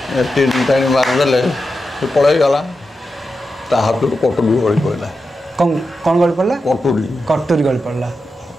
तीन टाणी मारिदे से पलैगला ता हाथ कटुरी गली पड़ा कौन गली पड़ा कटुरी कटुरी गली पड़ा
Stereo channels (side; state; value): both; normal; correlation 0.89